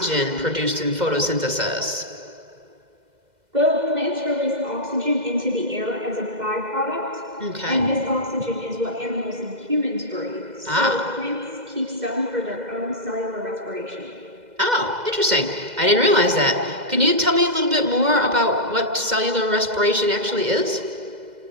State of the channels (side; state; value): left; late; 2.0 ms